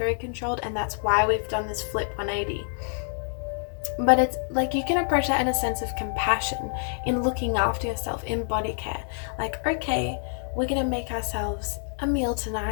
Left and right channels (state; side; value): silent; right; digital silence